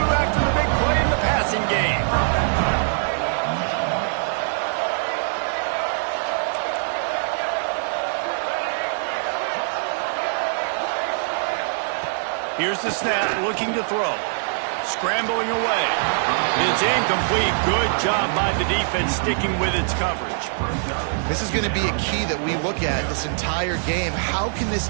the big play in the passing game. Here's the snap, looking to throw. Scrambling away. It's incomplete. Good job by the defense sticking with its coverage. This is going to be a key that we look at this entire game. How can this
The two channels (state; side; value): silent; left; digital silence